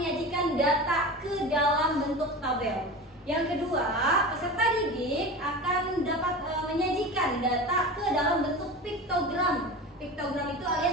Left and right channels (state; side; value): normal; both; correlation 0.30